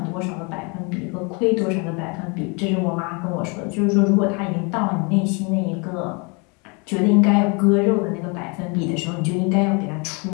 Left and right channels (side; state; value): right; quieter; 31.7 dB